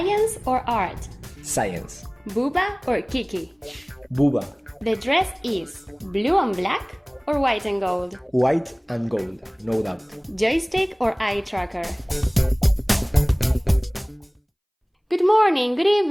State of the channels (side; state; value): both; identical; correlation 1.00